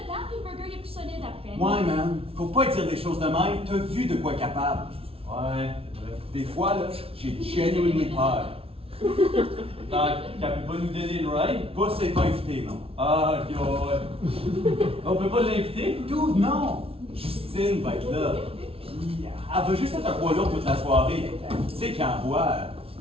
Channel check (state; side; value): late; left; 0.27 ms